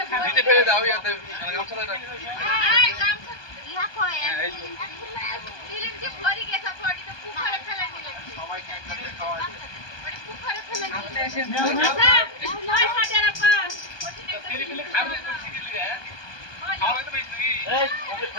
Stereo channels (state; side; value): late; right; 1.2 ms